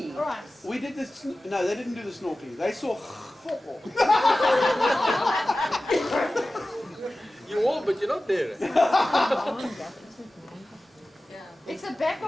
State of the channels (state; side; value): normal; both; correlation 0.96